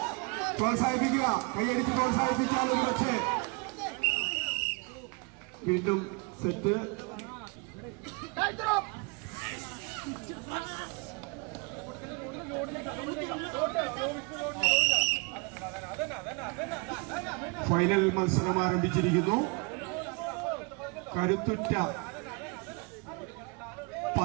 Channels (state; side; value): quieter; left; 31.1 dB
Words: പ്രോത്സാഹിപ്പിക്കുക. കൈയടിച്ച് പ്രോത്സാഹിപ്പിച്ചാൽ ഒരു പക്ഷേ വീണ്ടും സെറ്റ് ഫൈനൽ മത്സരം ആരംഭിച്ചിരിക്കുന്നു. കരുത്തുറ്റ